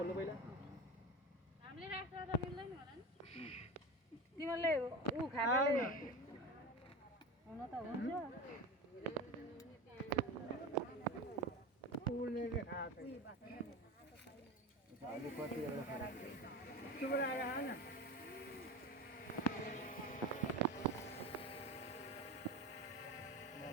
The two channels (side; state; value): both; normal; correlation 0.27